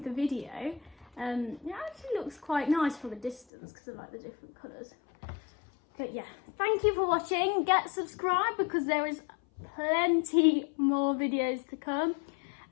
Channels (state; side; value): drops out; right; at 3.5 s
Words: the video. It actually looks quite nice from a distance because I like the different colours. But yeah, thank you for watching. Get subscribed because there is plenty more videos to come.